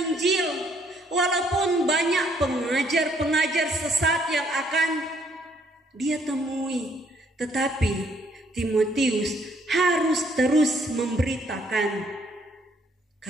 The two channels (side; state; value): both; normal; correlation 0.67